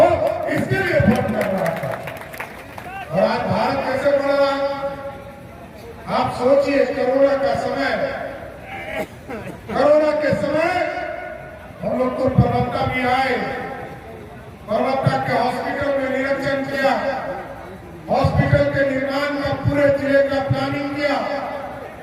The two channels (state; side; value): identical; both; correlation 1.00